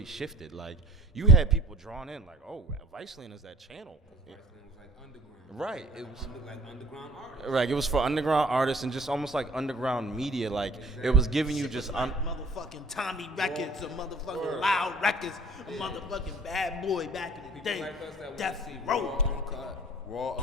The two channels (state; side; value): normal; both; correlation 0.49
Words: shifted. Like you had people drawn in, like, oh, Viceland is that channel. it was like underground. Right. It was like underground artists. right. It was for underground artists and just almost like underground media. Like it was giving you just motherfucking Tommy Records, or motherfucking Loud Records, a motherfucking Bad Boy back in the day. Like us that Death see Row. raw,